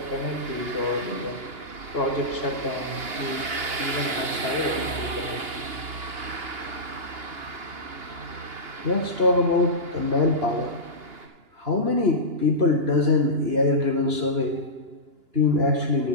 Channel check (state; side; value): late; left; 2.9 ms